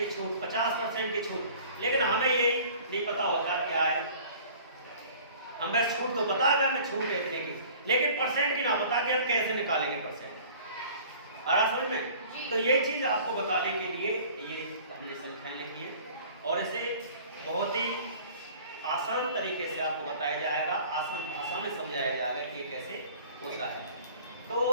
छूट, 50% की छूट, लेकिन हमें ये नहीं पता होता क्या है। हमें छूट तो पता है, हमें छूट है इतने की, लेकिन परसेंट की ना पता कि हम कैसे निकालेंगे परसेंट। आ रहा समझ में? तो ये चीज आपको बताने के लिए ये हमने संख्याएं लिखी है और इसे बहुत ही आसान तरीके से आपको बताया जाएगा, आसान भाषा में समझाया जाएगा कि ये कैसे होता है। तो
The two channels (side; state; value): both; inverted; correlation -0.48